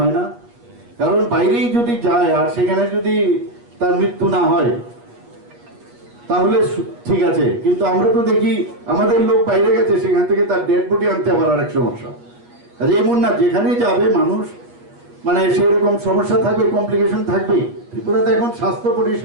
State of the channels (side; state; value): left; late; 8.4 ms